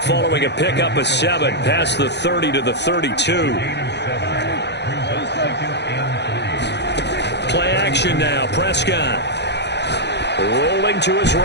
following a pickup of 7 past the 30 to the 32. Play action now. Prescott. Rolling to his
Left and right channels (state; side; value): late; right; 0.50 ms